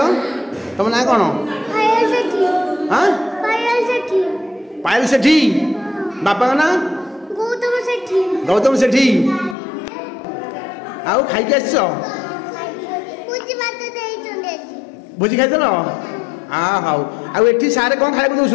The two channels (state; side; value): drops out; right; at 9.6 s